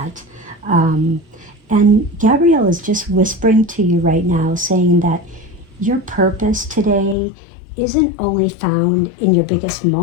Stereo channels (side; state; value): right; drops out; at 7.2 s